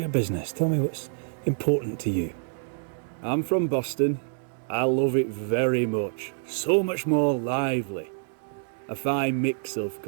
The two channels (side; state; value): left; silent; digital silence